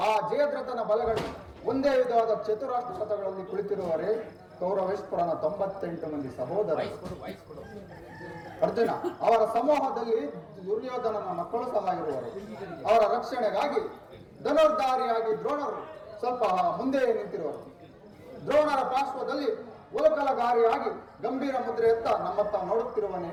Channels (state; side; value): identical; both; correlation 1.00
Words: ಆ ಜಯದ್ರಥನ ಬಲಗಳು ಒಂದೇ ವಿಧವಾದ ಚತುರಾಷ್ಟ್ರ ರಥಗಳಲ್ಲಿ ಕುಳಿತಿರುವವರೇ ಕೌರವೇಶ್ವರನ 98 ಮಂದಿ ಸಹೋದರ. ಅರ್ಜುನ ಅವರ ಸಮೂಹದಲ್ಲಿ ದುರ್ಯೋಧನನ ಮಕ್ಕಳು ಸಹ ಇರುವರು. ಅವರ ರಕ್ಷಣೆಗಾಗಿ ಧನುರ್ಧಾರಿಯಾಗಿ ದ್ರೋಣರು ಸ್ವಲ್ಪ ಮುಂದೆ ನಿಂತಿರುವರು. ದ್ರೋಣರ ಪಾರ್ಶ್ವದಲ್ಲಿ ಉಲಕಲಗಾರಿಯಾಗಿ ಗಂಭೀರ ಮುದ್ರೆ ಎತ್ತ ನಮ್ಮತ್ತ ನೋಡುತ್ತಿರುವನೇ